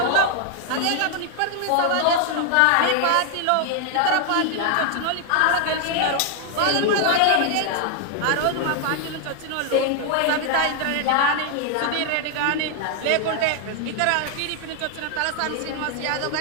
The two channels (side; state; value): both; different; correlation 0.00